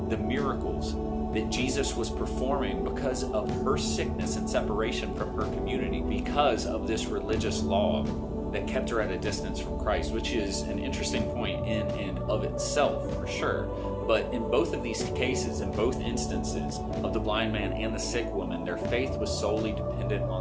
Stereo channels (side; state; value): both; identical; correlation 1.00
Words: the miracles that Jesus was performing because of her sickness and separation from her community, because of this religious law that kept her at a distance from Christ, which is an interesting point in and of itself, for sure. But in both of these cases, in both instances of the blind man and the sick woman, their faith was solely dependent